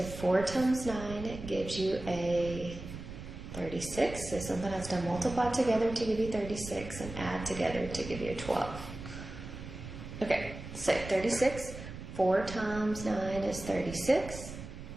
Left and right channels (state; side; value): noise; right; rumble, 11 dB below the sound